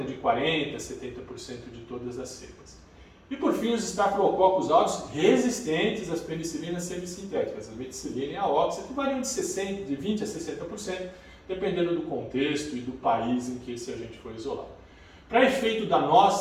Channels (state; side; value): identical; both; correlation 1.00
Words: de 40% a 70% de todas as cepas. E por fim, os Staphylococcus aureus resistentes às penicilinas semissintéticas, a meticilina e a oxa, que variam de 20% a 60%, dependendo do contexto e do país em que esse agente foi isolado. Para efeito da